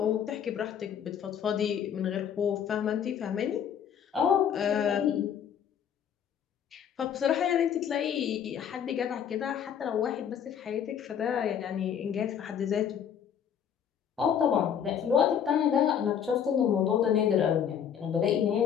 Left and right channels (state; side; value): quieter; right; 8.5 dB